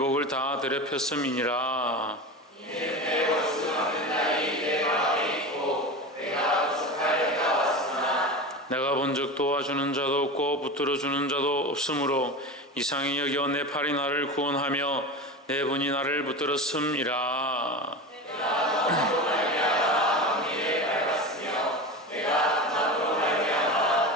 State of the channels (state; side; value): normal; both; correlation 0.27